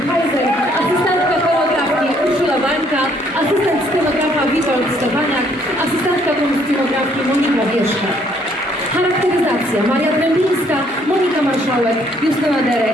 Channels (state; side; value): normal; both; correlation 0.66